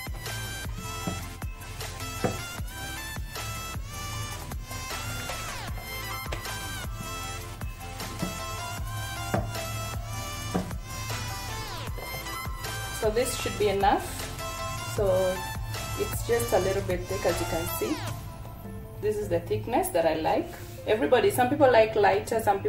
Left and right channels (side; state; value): both; identical; correlation 1.00